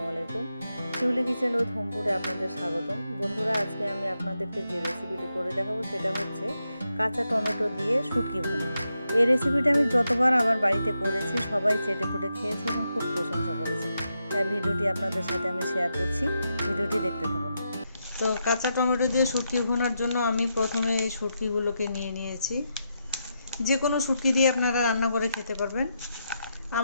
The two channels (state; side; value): inverted; both; correlation -0.84